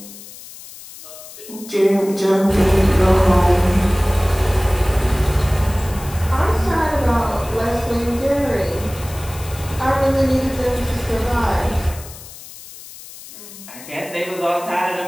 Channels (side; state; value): left; noise; hiss, 16 dB below the sound